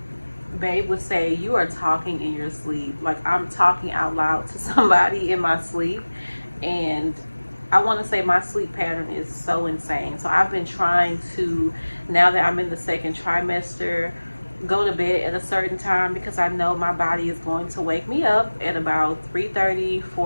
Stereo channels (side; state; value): both; inverted; correlation -1.00